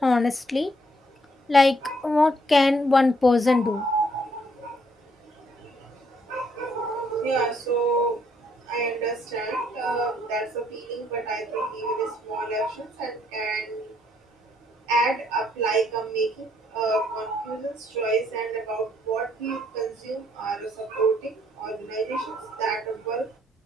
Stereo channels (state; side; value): normal; both; correlation 0.69